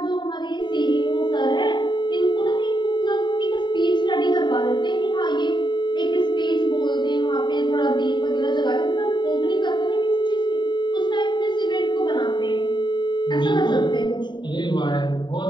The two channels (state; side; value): late; right; 0.22 ms